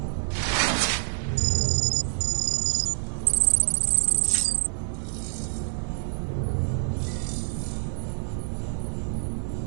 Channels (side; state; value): left; silent; digital silence